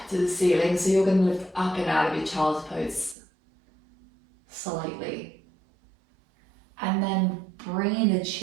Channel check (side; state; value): left; drops out; at 3.2 s